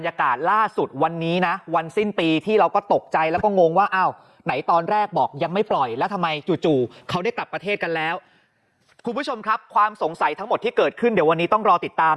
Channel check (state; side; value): identical; both; correlation 1.00